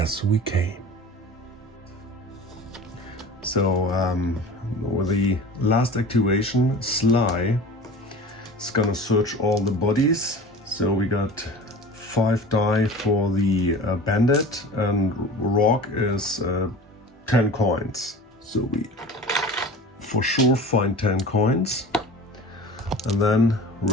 we came. So, with the last activation, Sly is gonna search all the bodies. So we got 5 die for the bandit, and Rorg is 10 coins. So we for sure find 10 coins. And then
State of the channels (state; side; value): normal; both; correlation 0.37